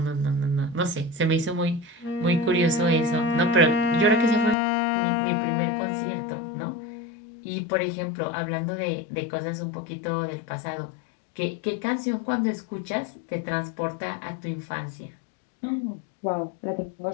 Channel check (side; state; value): right; drops out; at 4.5 s